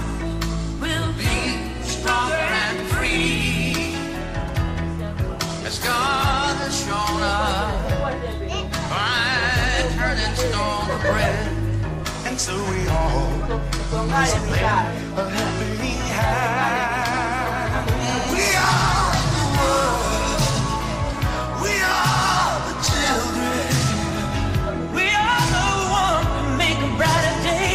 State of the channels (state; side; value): identical; both; correlation 1.00